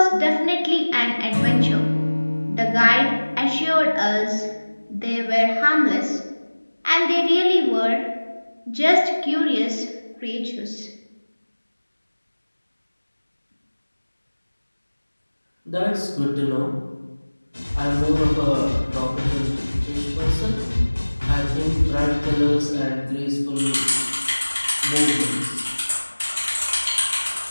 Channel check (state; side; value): inverted; both; correlation -1.00